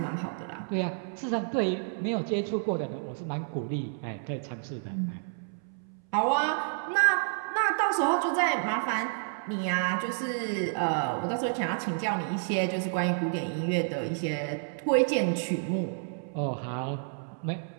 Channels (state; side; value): silent; left; 58 dB below the other